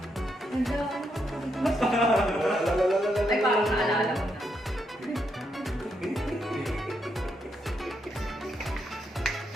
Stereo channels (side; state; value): both; normal; correlation 0.79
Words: Ay, parang naalala ko na.